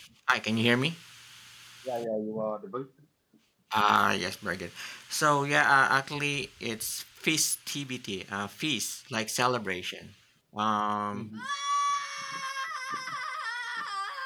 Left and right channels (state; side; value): identical; both; correlation 1.00